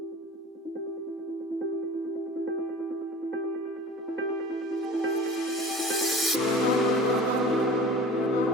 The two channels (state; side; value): normal; both; correlation 0.40